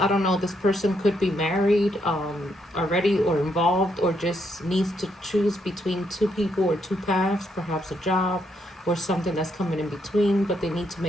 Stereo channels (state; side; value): normal; both; correlation 0.76